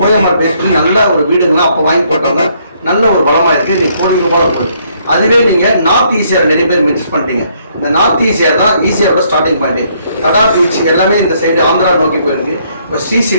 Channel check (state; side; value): inverted; both; correlation -0.68